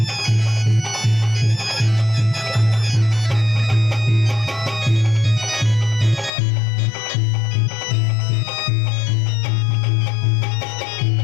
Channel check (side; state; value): right; drops out; at 6.3 s